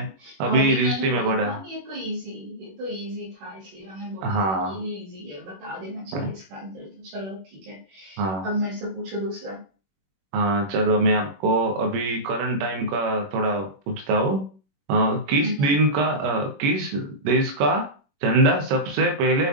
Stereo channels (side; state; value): left; late; 21 ms